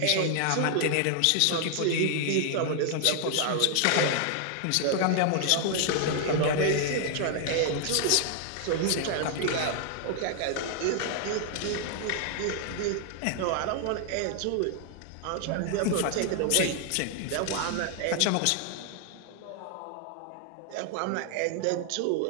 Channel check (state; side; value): different; both; correlation 0.00